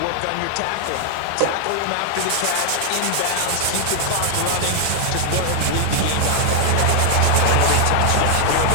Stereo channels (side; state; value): both; different; correlation 0.00